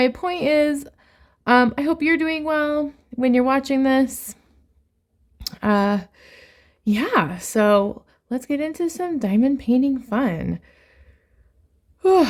point is, I hope you're doing well when you're watching this. Yeah, so let's get into some diamond painting fun.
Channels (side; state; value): both; identical; correlation 1.00